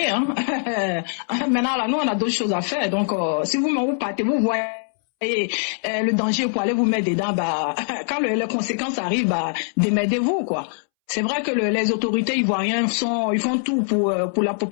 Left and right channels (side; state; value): right; silent; 64 dB below the other